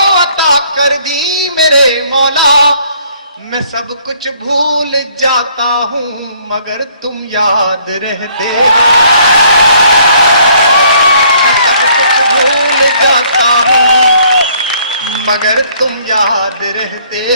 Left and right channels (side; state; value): both; inverted; correlation -0.62